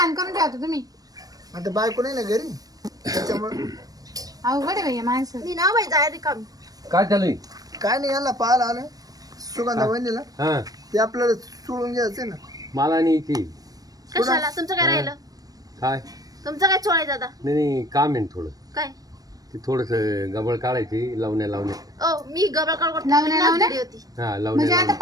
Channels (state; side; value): late; left; 0.18 ms